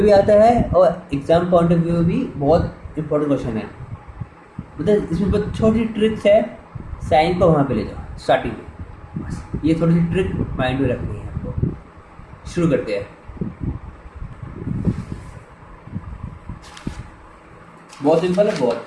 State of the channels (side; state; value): both; identical; correlation 1.00